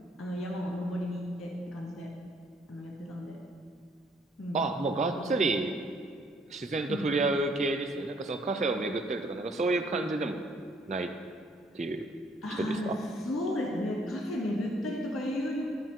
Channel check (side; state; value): both; normal; correlation 0.65